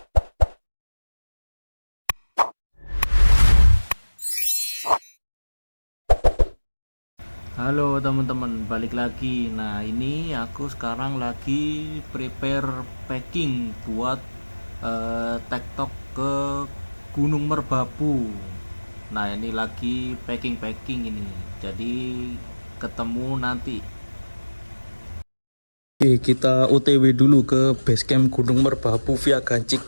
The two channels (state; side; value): inverted; both; correlation -1.00